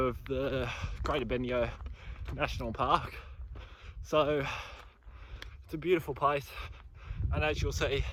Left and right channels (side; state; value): both; identical; correlation 1.00